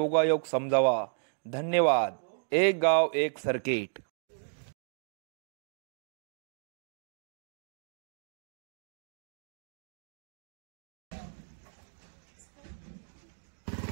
समजावा. धन्यवाद. एक गाव एक सर्किट.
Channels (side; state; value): left; silent; digital silence